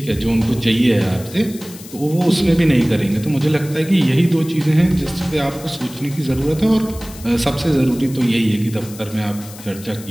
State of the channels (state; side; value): noise; left; hiss, 17 dB below the sound